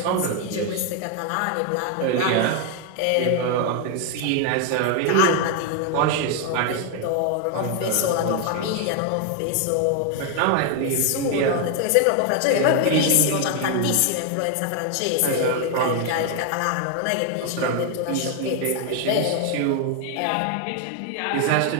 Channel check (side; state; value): both; different; correlation 0.01